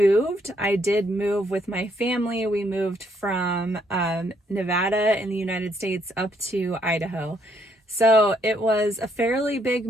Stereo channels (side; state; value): both; normal; correlation 0.71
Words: I did move with my family. We moved from Nevada in the United States up to Idaho. So it was a fairly big